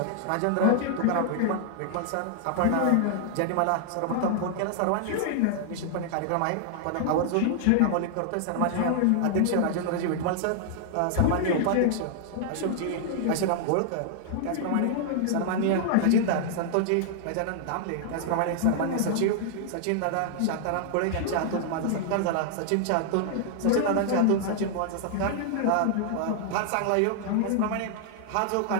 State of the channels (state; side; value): different; both; correlation -0.01